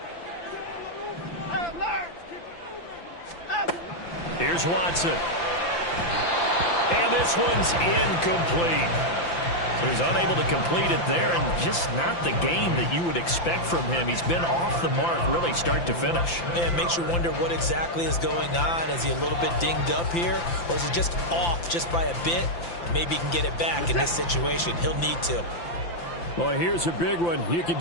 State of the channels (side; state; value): right; late; 5.8 ms